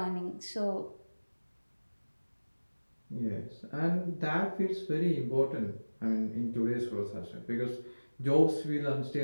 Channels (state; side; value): inverted; both; correlation -1.00